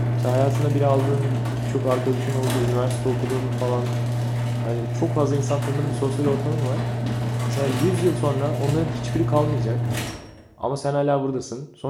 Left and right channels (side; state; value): both; identical; correlation 1.00